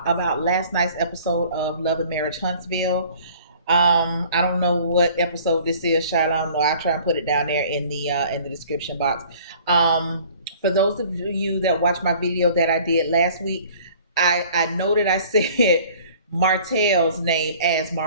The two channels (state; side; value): inverted; both; correlation -0.51